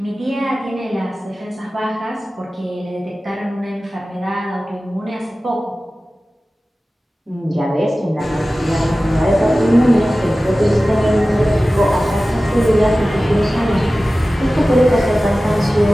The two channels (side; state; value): both; normal; correlation 0.96